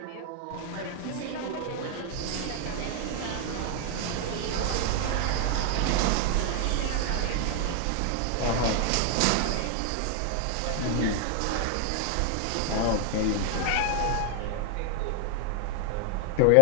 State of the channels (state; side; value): different; both; correlation 0.00